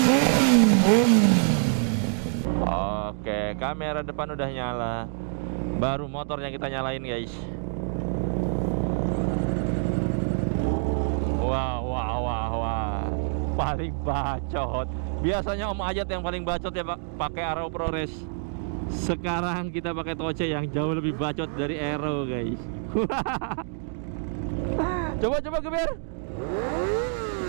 Oke, kamera depan udah nyala. Baru motornya kita nyalain guys. Wah, paling bacot. Biasanya Om Ajat yang paling bacot ya Pak, pakai Aero ProRes. Sekarang kita pakai Toce yang jauh lebih bacot dari Aero guys. Coba geber.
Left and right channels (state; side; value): silent; left; 61 dB below the other